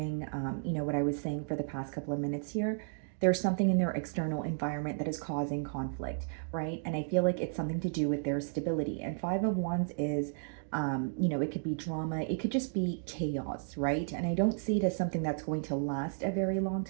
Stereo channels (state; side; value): silent; left; digital silence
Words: what I was saying for the past couple of minutes here. There's something in their external environment that is causing conflict, right? And I feel like it's something to do with their stability. And Five of Wands is, it could be drama, it could just be chaos, right? And I don't see it as something that's going to last a very long